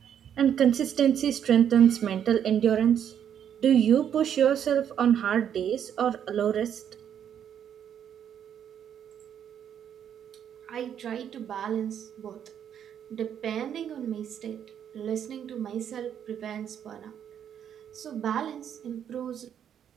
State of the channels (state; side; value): quieter; left; 9.0 dB